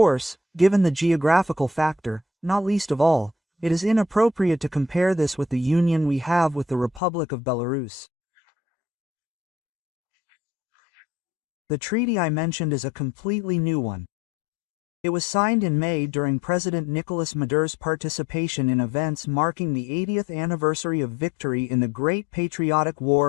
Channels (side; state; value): right; drops out; at 7.0 s